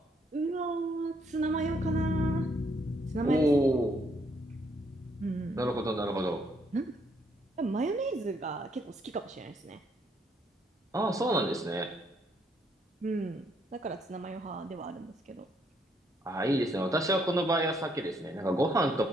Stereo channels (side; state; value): both; normal; correlation 0.71